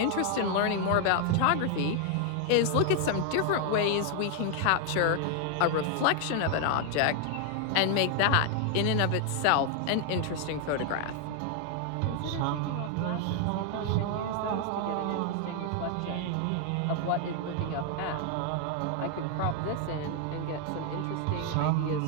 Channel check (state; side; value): different; both; correlation 0.00